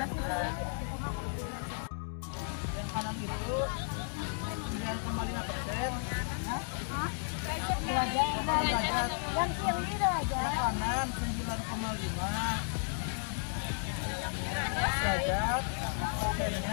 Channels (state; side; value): silent; right; 55 dB below the other